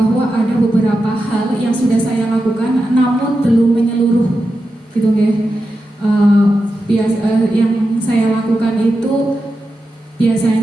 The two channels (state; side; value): normal; both; correlation 0.90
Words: ada beberapa hal yang sudah saya lakukan namun belum menyeluruh, gitu ya. Yang saya lakukan itu